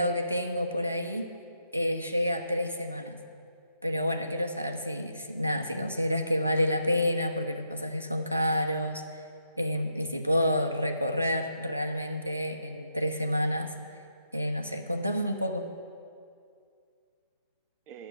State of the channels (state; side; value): inverted; both; correlation -0.80